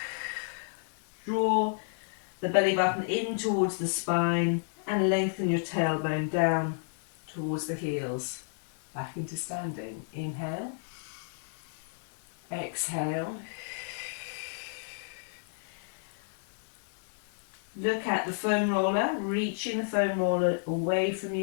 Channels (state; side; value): silent; right; 57 dB below the other